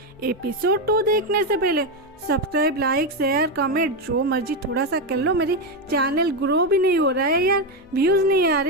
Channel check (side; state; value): both; normal; correlation 0.08